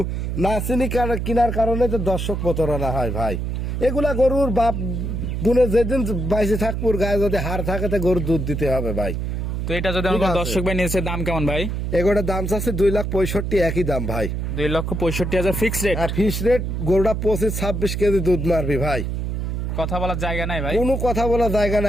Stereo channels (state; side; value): noise; right; hum, 2 dB below the sound